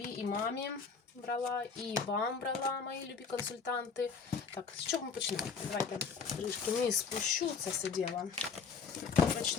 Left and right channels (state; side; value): quieter; right; 5.5 dB